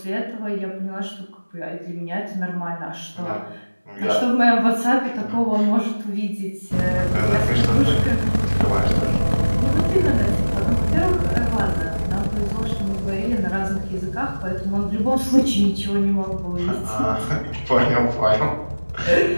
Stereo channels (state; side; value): inverted; both; correlation -1.00